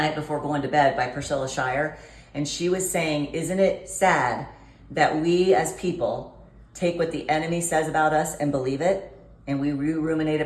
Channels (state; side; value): identical; both; correlation 1.00